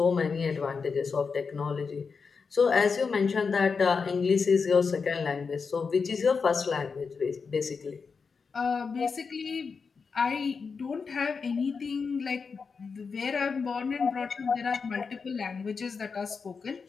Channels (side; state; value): right; quieter; 5.2 dB